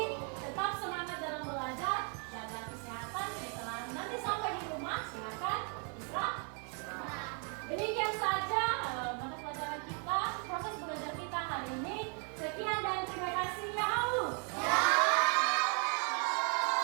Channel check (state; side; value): quieter; left; 39.6 dB